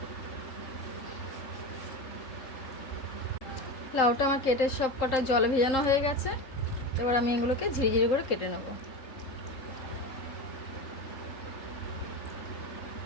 লাউটা আমার কেটে সব কটা জলে ভেজানো হয়ে গেছে। এবার আমি এগুলোকে ঝিরিঝিরি করে কেটে নেব।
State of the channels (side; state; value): right; late; 3.8 ms